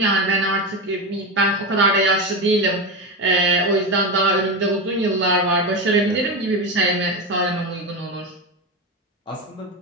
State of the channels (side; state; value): both; normal; correlation 0.17